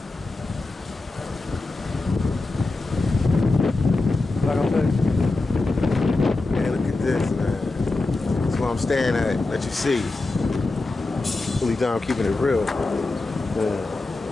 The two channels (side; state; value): right; quieter; 3.3 dB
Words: Like I said, man, look at this, man. That's where I'm staying at. Let you see. Philly Dom keeping it real. Man.